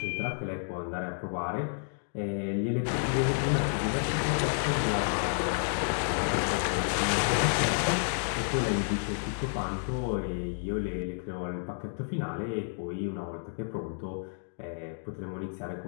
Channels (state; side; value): silent; right; digital silence